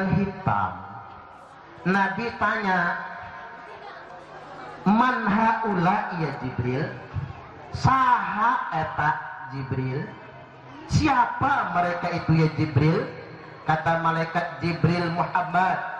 hitam. Nabi tanya, "Man haula ya Jibril?" Saha eta Jibril? Siapa mereka itu ya Jibril? Kata malaikat Jibril, Muhammad.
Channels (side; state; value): both; identical; correlation 1.00